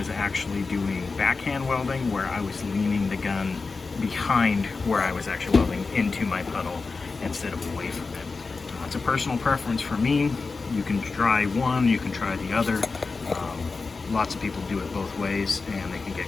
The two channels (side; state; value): right; quieter; 4.2 dB